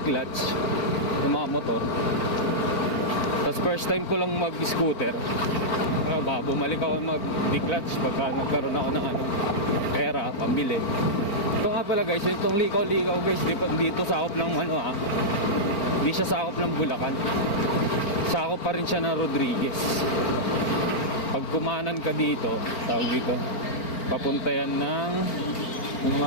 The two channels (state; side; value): late; right; 4.4 ms